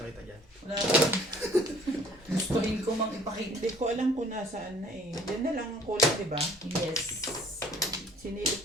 dyan. wala akong. Gustuhin ko mang ipakita. Hindi ko alam kung nasaan na eh. Diyan na lang ang kulang, di ba? Yes.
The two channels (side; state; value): both; normal; correlation 0.55